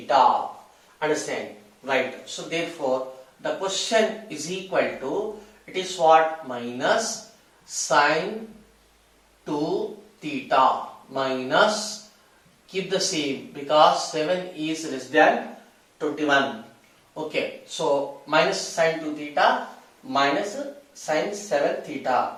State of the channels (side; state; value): both; identical; correlation 1.00